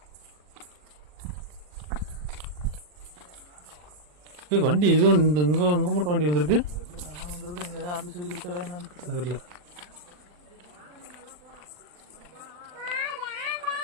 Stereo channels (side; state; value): left; late; 40 ms